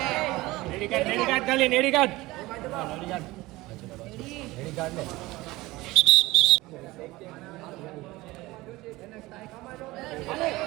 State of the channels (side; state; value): left; quieter; 19.8 dB